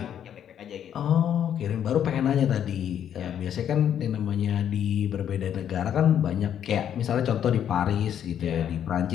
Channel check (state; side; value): quieter; right; 9.5 dB